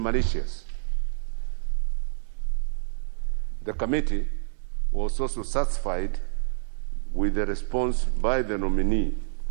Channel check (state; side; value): silent; left; digital silence